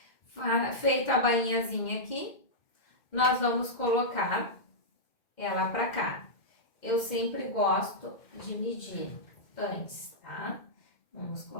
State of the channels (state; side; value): late; right; 2.1 ms